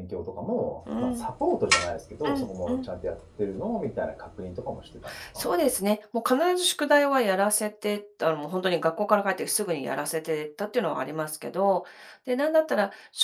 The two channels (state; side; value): identical; both; correlation 1.00